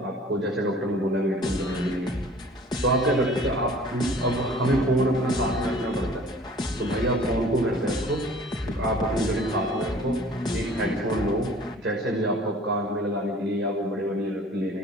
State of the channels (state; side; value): normal; both; correlation 0.49